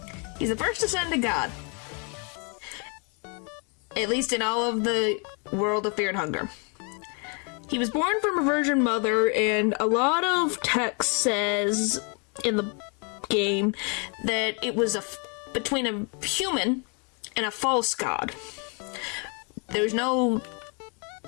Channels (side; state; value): right; quieter; 36.6 dB